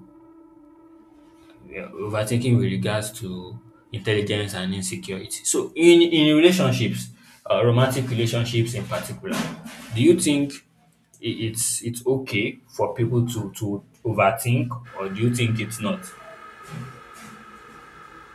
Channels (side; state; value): both; identical; correlation 1.00